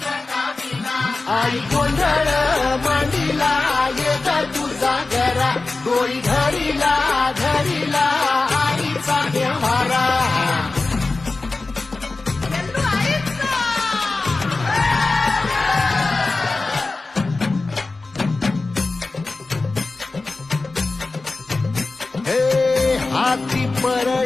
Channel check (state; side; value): quieter; right; 3.5 dB